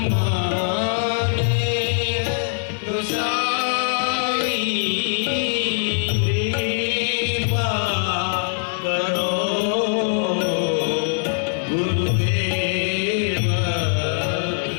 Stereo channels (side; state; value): right; silent; digital silence